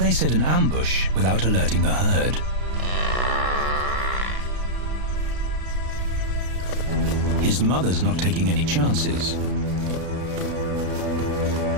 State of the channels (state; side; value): late; left; 33 ms